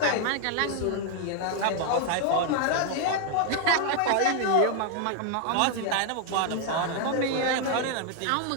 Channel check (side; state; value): both; different; correlation 0.00